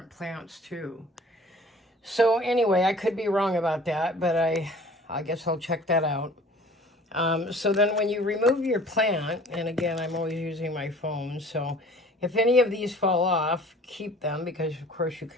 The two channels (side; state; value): both; normal; correlation 0.49